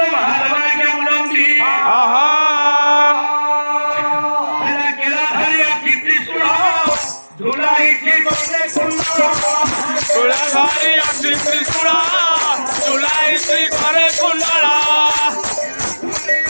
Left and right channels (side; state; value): both; inverted; correlation -1.00